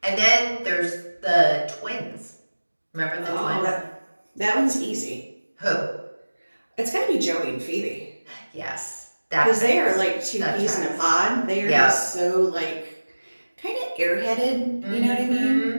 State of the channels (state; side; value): inverted; both; correlation -1.00